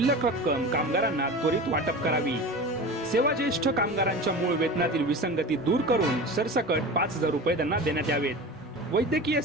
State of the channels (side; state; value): both; normal; correlation 0.32